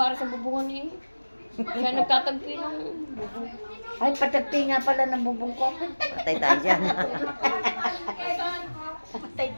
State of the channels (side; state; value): both; inverted; correlation -1.00